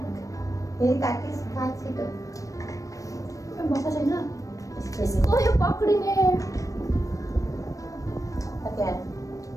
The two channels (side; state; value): right; late; 0.16 ms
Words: Ini kaki sekali tu. भएको छैन यसको यो पक्रिने Oke.